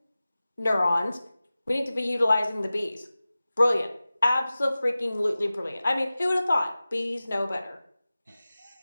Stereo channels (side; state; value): both; inverted; correlation -0.96